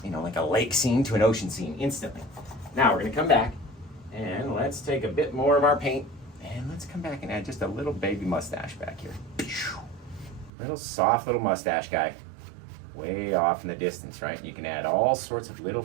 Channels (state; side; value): drops out; left; at 10.5 s